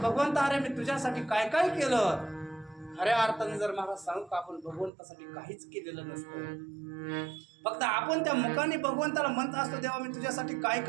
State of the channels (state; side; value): drops out; left; at 4.9 s